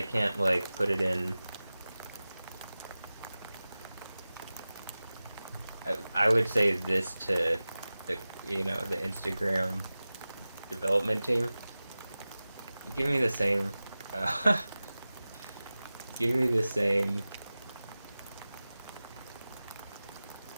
can't like put it in. I would say this to the the Instagram development team. Give me the same. Give me the same.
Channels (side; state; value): both; inverted; correlation -0.96